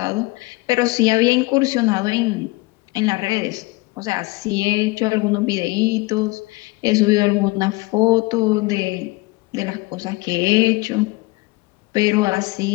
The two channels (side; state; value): right; quieter; 23.4 dB